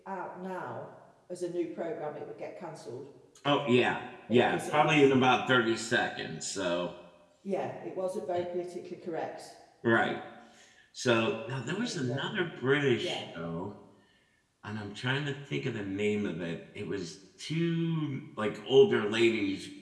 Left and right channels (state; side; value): identical; both; correlation 1.00